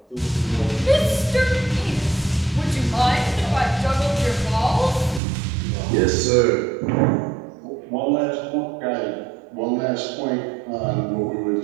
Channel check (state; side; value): drops out; left; at 5.2 s